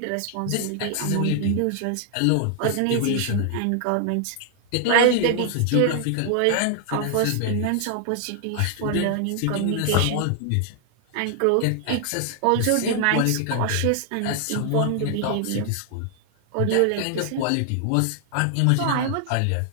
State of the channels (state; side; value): different; both; correlation 0.00